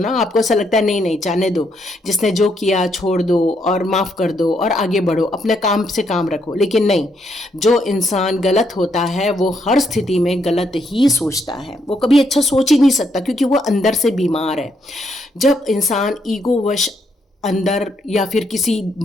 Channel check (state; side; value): normal; both; correlation 0.75